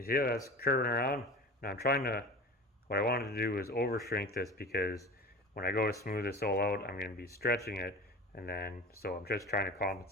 see how that's curving around? Now I'm trying to, what I wanted to do is over shrink this because when I go to smooth this all out, I'm going to be stretching it, and then, so I'm just trying to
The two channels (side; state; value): both; normal; correlation 0.35